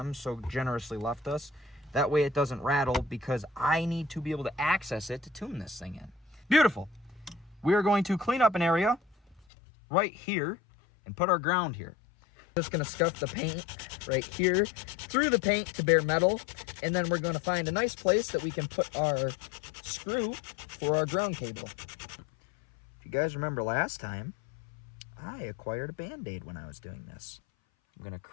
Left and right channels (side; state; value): right; drops out; at 9.4 s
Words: so generously left us. That way it doesn't rattle because I need to be able to access it to tune this thing in. Beautiful. We are going to clean up an area right here and put our ground here. Just going to scuff the paint right here through the paint to bare metal, and then we're going to find a nice place that we can put our screw for our ground cable. If you guys remember last time, I acquired a Band-Aid when I was doing this. I'm going to